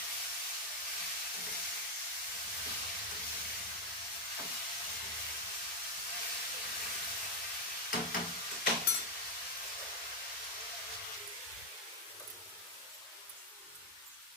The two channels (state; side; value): normal; both; correlation 0.03